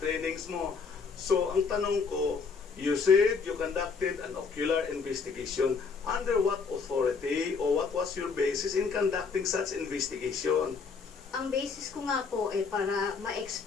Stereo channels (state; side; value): quieter; right; 5.2 dB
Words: trainings mo. So, ang tanong ko, you said you conducted an ocular investigation. Under what authority or what was your basis in conducting such investigation? ang basis ko nga po para